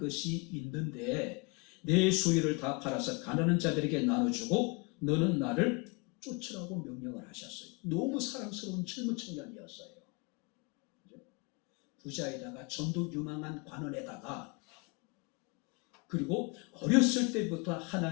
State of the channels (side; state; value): right; quieter; 29.9 dB